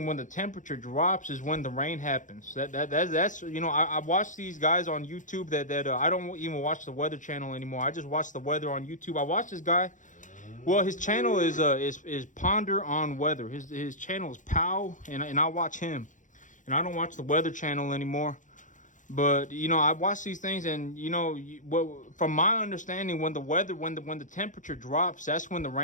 when the temperature drops is when the rain happens. That's I watch these guys on YouTube that I don't even watch the Weather Channel anymore. I just watch the weather on YouTube. I watch this guy. Well, his channel is Ponder on Weather. His channel is Pow, and I watch him. And I don't watch the Weather Channel anymore. But I watch these things, and from my understanding, when the temperature drops, that's when the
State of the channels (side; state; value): right; late; 0.37 ms